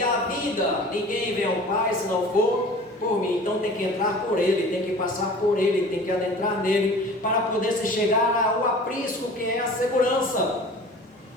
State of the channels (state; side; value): normal; both; correlation 0.42